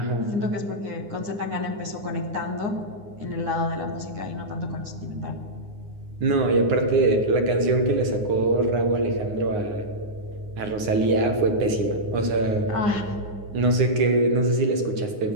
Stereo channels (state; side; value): late; left; 9.7 ms